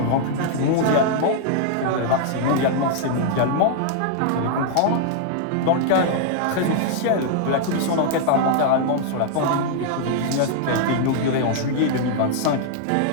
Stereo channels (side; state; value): both; different; correlation -0.01